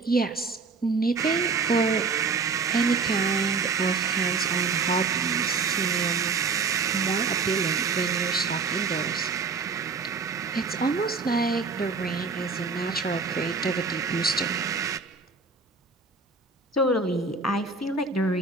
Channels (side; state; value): left; quieter; 4.5 dB